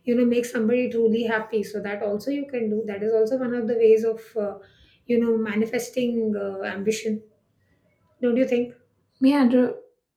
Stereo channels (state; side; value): identical; both; correlation 1.00